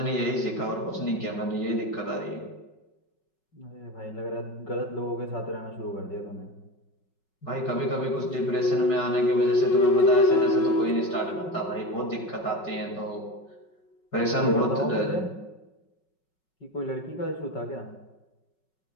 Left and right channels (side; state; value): right; late; 5.4 ms